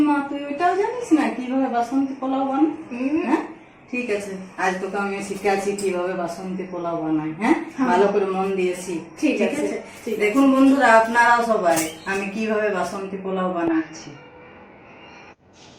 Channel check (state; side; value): identical; both; correlation 1.00